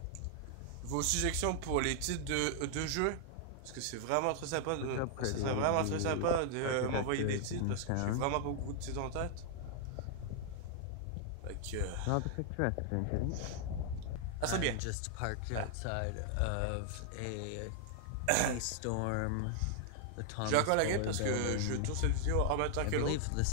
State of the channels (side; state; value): both; different; correlation 0.00